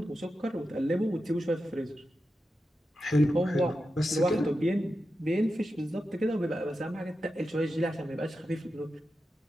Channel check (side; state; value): both; normal; correlation 0.90